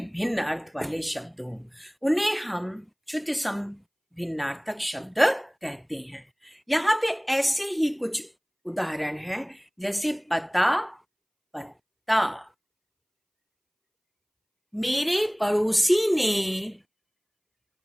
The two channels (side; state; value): both; identical; correlation 1.00